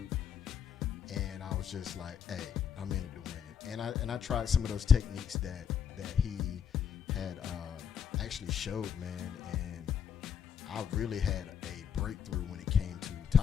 and I was just like, hey, I'm in it to win it. And I tried some of those techniques that he had actually showed, man, and I really had a breakthrough when it came to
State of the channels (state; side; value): quieter; right; 7.7 dB